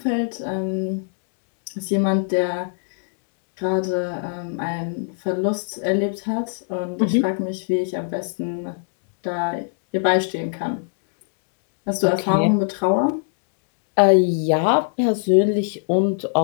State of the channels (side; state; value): right; silent; digital silence